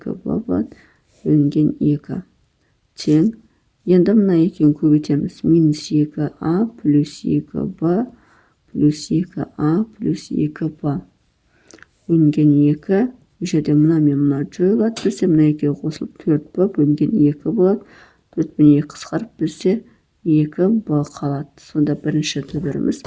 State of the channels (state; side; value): identical; both; correlation 1.00